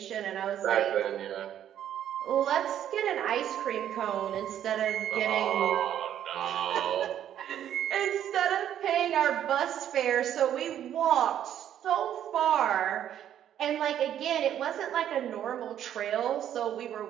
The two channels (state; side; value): quieter; left; 10.5 dB